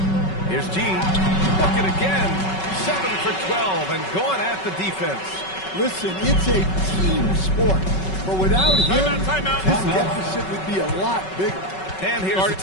Here's G. Look it again. 7 for 12 and going at the defense. Listen, it's a team sport. But without him, Timeout. this deficit would be a lot bigger. And here's a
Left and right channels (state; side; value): late; right; 5.3 ms